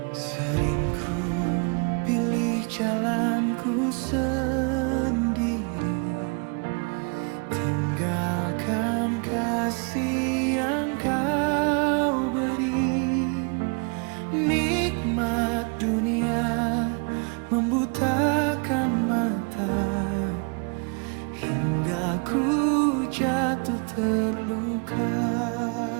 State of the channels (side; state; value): left; quieter; 35.7 dB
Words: Sering ku pilih jalanku sendiri, tinggalkan kasih yang kau beri. Nikmat dunia membutakan mata, hingga ku jatuh terluka.